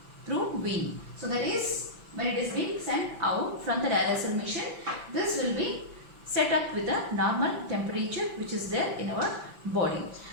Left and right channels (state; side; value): late; left; 5.9 ms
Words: through vein. So that is when it is being sent out from the dialyzer machine, this will be set up with a normal temperature which is there in our body.